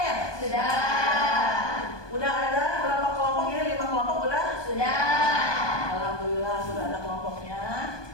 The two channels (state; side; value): late; right; 1.2 ms